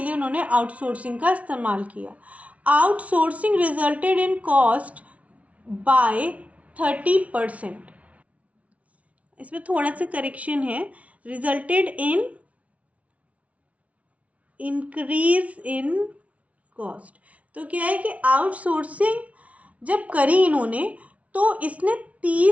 लिए उन्होंने आउटसोर्सिंग का इस्तेमाल किया। Outsourcing resulted in cost by 30%। इसमें थोड़ा सा करेक्शन है, resulted in increase in cost. तो क्या है कि आउटसोर्सिंग जब करी इन्होंने तो इसने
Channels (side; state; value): left; late; 0.066 ms